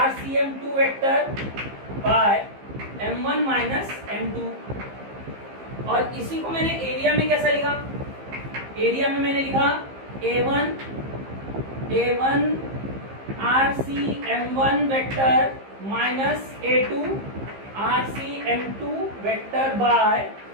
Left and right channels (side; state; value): left; late; 15 ms